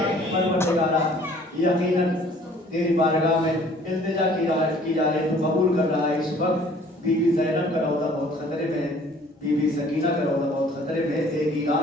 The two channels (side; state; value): both; normal; correlation 0.55